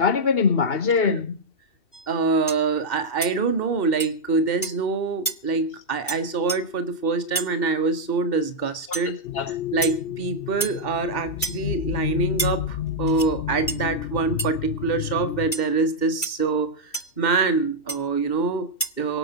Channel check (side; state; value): right; late; 2.3 ms